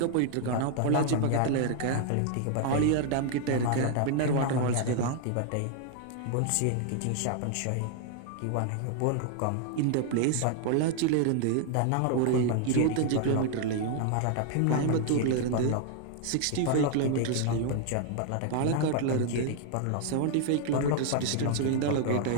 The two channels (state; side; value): different; both; correlation 0.00